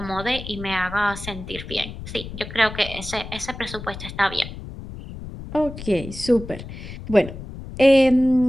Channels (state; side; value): noise; left; rumble, 11 dB below the sound